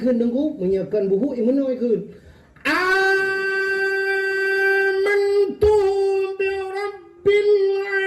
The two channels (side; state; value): both; identical; correlation 1.00